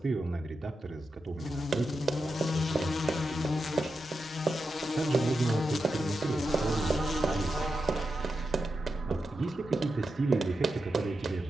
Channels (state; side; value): normal; both; correlation 0.88